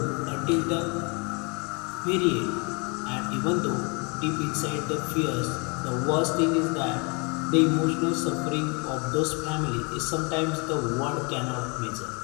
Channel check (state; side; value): quieter; right; 32.2 dB